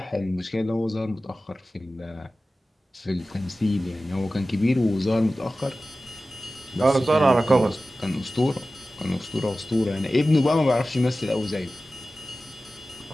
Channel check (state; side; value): normal; both; correlation 0.95